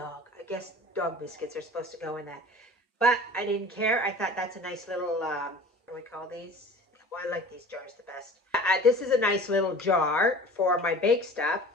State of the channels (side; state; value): both; normal; correlation 0.41